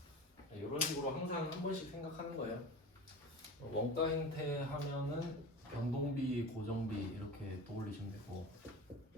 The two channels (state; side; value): normal; both; correlation 0.32